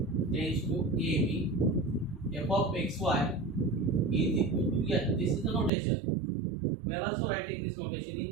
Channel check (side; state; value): left; drops out; at 5.7 s